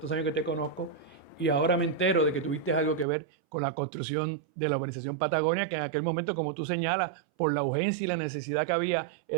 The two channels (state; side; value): drops out; left; at 3.1 s